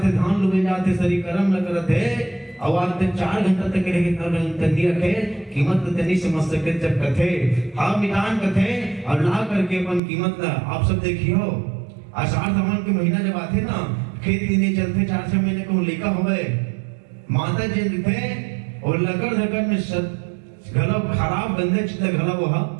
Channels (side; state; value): left; drops out; at 10.0 s